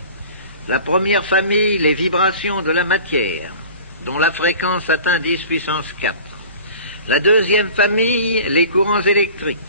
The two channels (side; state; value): both; inverted; correlation -0.41